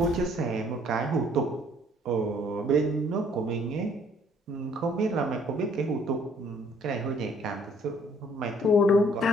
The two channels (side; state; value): both; normal; correlation 0.61